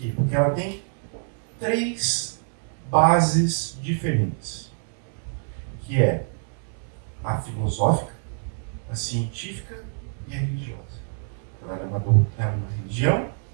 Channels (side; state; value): left; silent; digital silence